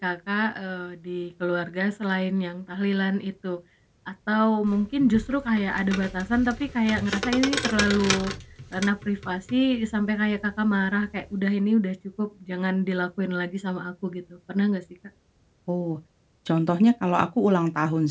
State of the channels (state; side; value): identical; both; correlation 1.00